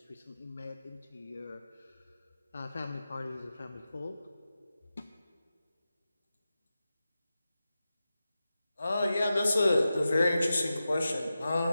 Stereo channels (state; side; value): inverted; both; correlation -0.92